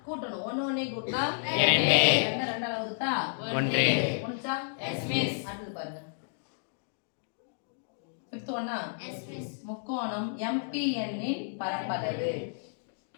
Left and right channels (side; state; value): right; silent; digital silence